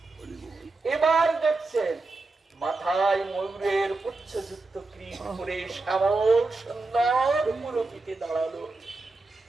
এবার দেখছেন মাথায় ময়ূরের পুচ্ছযুক্ত ক্রীট করে শ্যামল সুন্দর মূরতিতে দাঁড়ালো।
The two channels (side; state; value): left; quieter; 3.5 dB